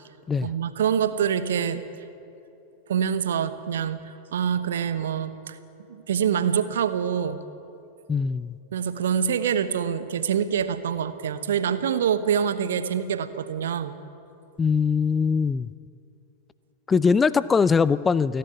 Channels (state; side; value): normal; both; correlation 0.06